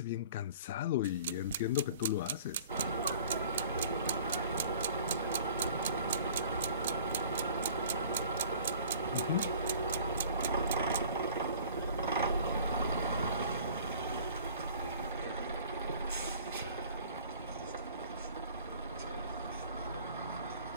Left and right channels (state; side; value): inverted; both; correlation -0.47